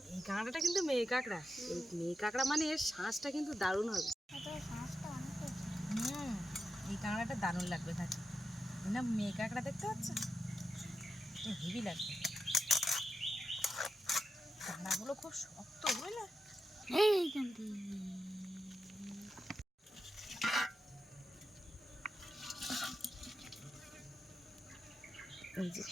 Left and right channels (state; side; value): normal; both; correlation 0.88